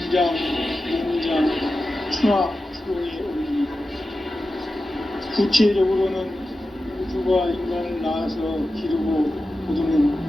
농장, 충화, 추동의 원리이다. 구체적으로는 우주가 인간을 낳아서 기르고 거두는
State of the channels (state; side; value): normal; both; correlation 0.93